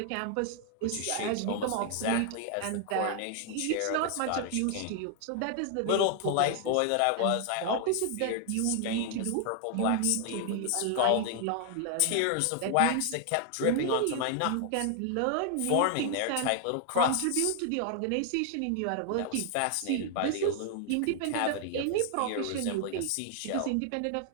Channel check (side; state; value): both; different; correlation 0.00